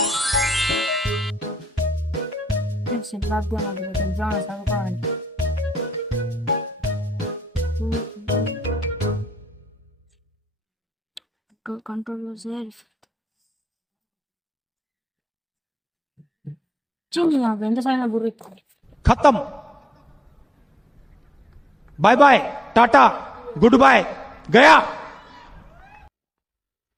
చదువుకోవాలి. కంట్రోల్ ఎంత సాయం గురి खत्म bye bye tata good bye गया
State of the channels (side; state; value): both; normal; correlation 0.87